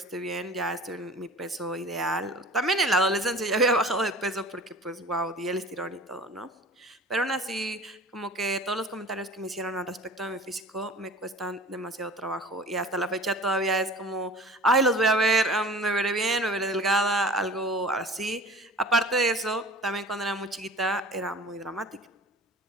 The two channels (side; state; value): both; normal; correlation 0.41